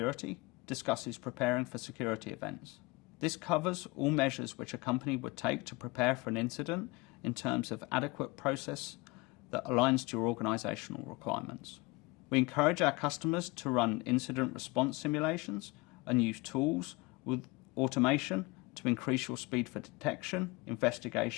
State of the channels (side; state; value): right; quieter; 23.5 dB